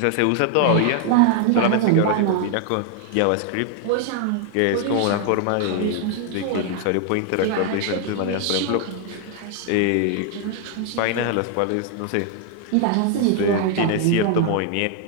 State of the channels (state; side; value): different; both; correlation 0.00